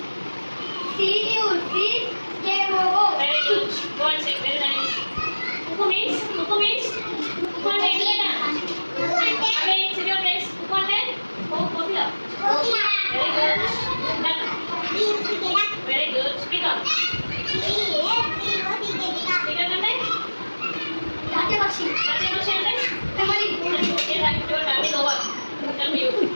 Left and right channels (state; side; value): inverted; both; correlation -1.00